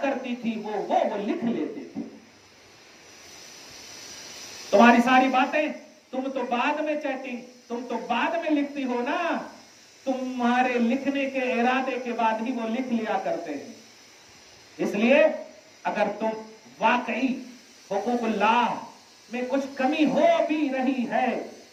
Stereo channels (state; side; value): identical; both; correlation 1.00